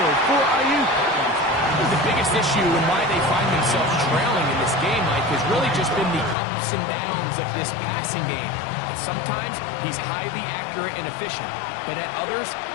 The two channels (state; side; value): drops out; right; at 6.4 s